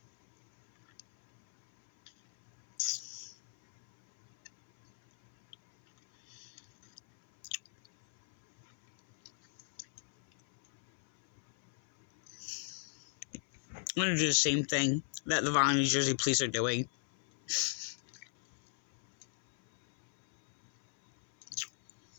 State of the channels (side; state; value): right; silent; 54 dB below the other